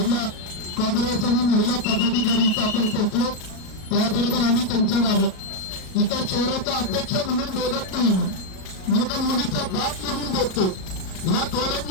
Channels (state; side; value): late; right; 37 ms